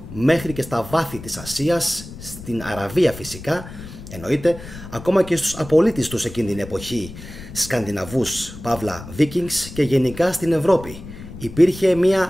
μέχρι και στα βάθη της Ασίας, στην Αραβία φυσικά, εννοείται, ακόμα και στους απολύτες τους εκείνη την εποχή, Σκανδιναβούς, παύλα Βίκινγκς, και γενικά στην Ευρώπη. Υπήρχε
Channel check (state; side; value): noise; left; rumble, 14 dB below the sound